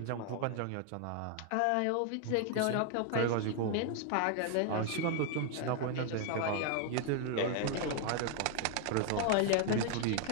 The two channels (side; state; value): both; different; correlation 0.00